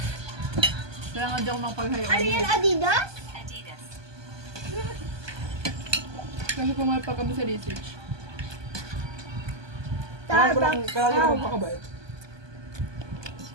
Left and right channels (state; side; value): late; left; 1.2 ms